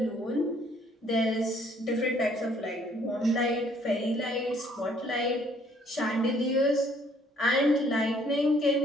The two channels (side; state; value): both; normal; correlation 0.63